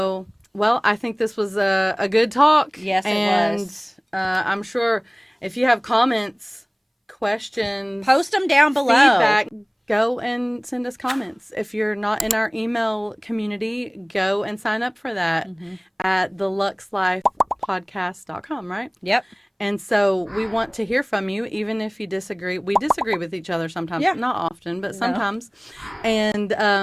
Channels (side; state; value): both; identical; correlation 1.00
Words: right. Well, I think this was a good talk. Yes, it was. And I'm sure if you have comments, questions, post them down below. Feedback, go and send us comments. If you're not in our email community, go and sign up for that at theluxlifepodcast.com, right? Yep. And so we want to hear from you, even if you disagree. We disagree with each other sometimes, not often, but sometimes. And